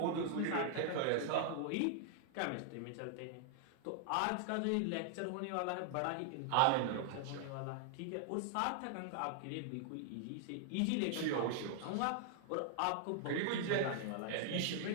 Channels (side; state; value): both; different; correlation 0.00